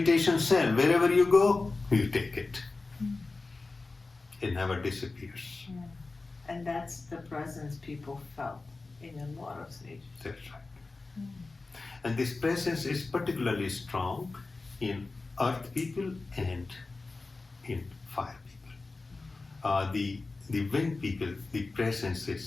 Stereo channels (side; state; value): right; quieter; 3.6 dB